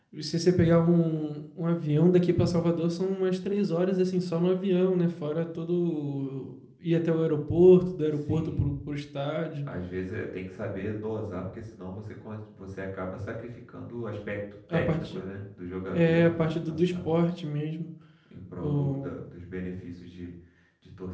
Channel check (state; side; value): identical; both; correlation 1.00